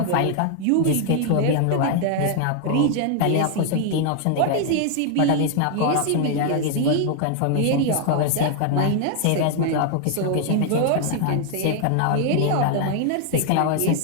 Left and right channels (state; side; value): different; both; correlation 0.00